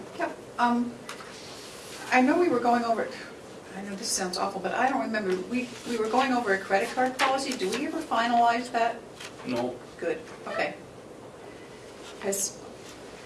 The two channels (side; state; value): both; identical; correlation 1.00